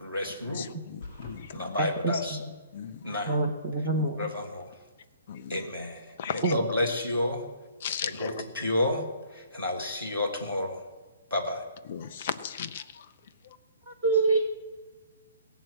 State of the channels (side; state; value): both; inverted; correlation -0.56